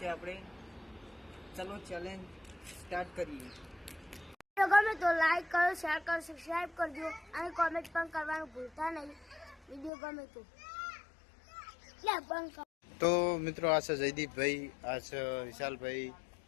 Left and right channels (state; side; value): drops out; right; at 9.9 s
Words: આપણે। ચલો ચેલેન્જ સ્ટાર્ટ કરીએ। ગમે તો લાઈક કરો, શેર કરો, સબસ્ક્રાઇબ કરજો અને કોમેન્ટ પણ કરવાનું ભૂલતા નહીં। વિડીયો ગમે તો તો મિત્રો આ છે જયદીપભાઈ, આ છે વિશાલભાઈ,